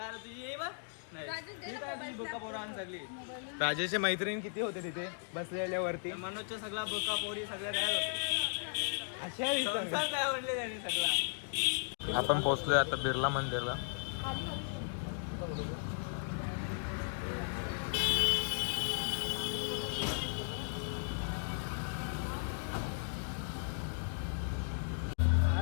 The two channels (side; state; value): right; silent; digital silence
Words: नाही. राजेशच्या मैत्रीण किती होते तिथे बसलेल्यावरती? मनोजच्या सगळा बोका पोरी सगळ्या तयार होते. अशा दिसतात काय म्हणले त्यांनी सगळा. आपण पोहोचलोय आता बिर्ला मंदिरला.